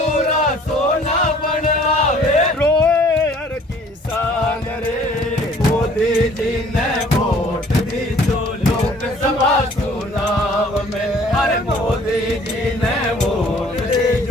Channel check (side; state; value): both; normal; correlation 0.55